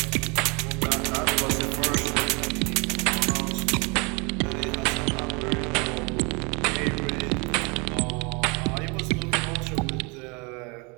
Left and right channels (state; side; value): quieter; left; 30.2 dB